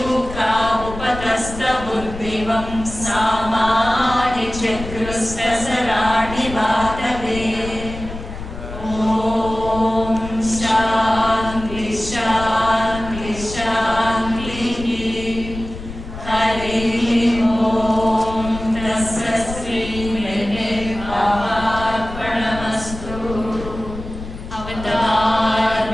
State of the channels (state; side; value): noise; left; rumble, 11 dB below the sound